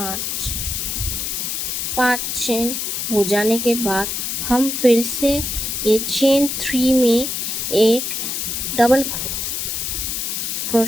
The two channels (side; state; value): left; noise; hiss, 2 dB below the sound